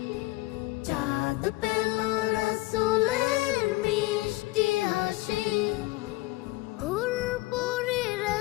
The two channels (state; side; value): quieter; right; 20.8 dB